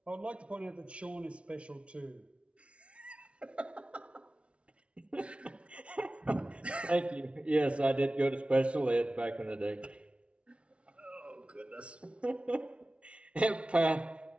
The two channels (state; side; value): late; left; 0.061 ms